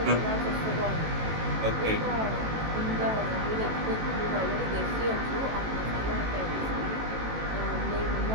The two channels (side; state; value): left; late; 18 ms